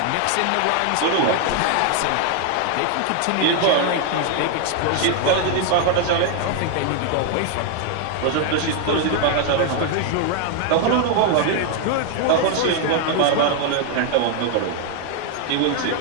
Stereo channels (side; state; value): both; different; correlation 0.00